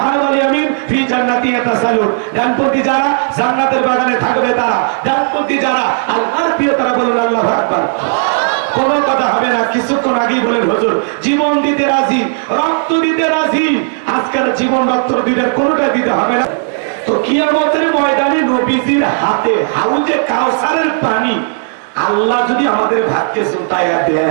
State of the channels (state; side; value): silent; left; digital silence